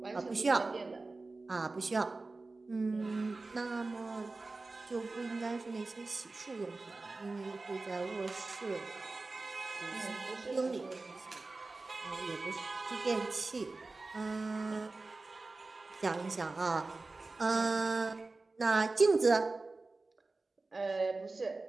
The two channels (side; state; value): left; quieter; 3.5 dB